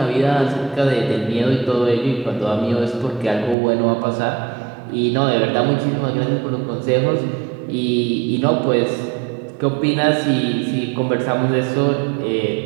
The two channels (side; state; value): left; drops out; at 3.6 s